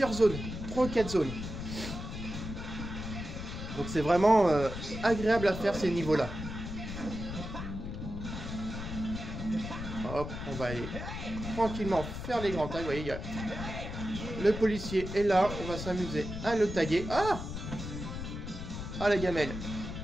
zones. 3 ou 4 zones. Donc c'est vraiment agréable à faire ces niveaux-là. Hop, on va aller tranquillement faire les grands tags. Vous voyez, le policier est là. On va s'amuser à le taguer. Ah! Ah, la gamelle.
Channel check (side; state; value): left; noise; rumble, 7 dB below the sound